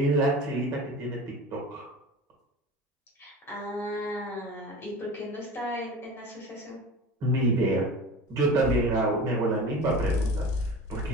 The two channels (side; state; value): both; normal; correlation 0.34